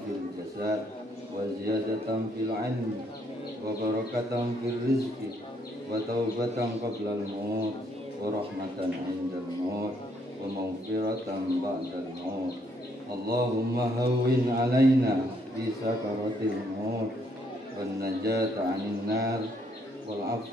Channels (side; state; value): both; normal; correlation 0.71